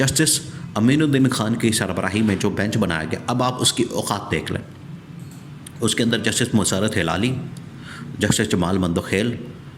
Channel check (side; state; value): both; identical; correlation 1.00